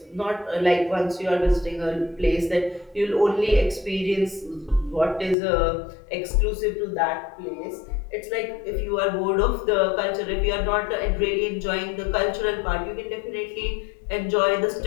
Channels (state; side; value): drops out; right; at 5.4 s